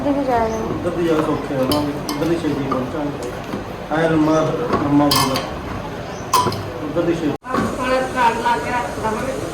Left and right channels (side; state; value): both; identical; correlation 1.00